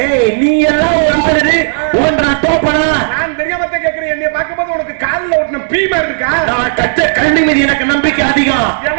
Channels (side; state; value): left; silent; digital silence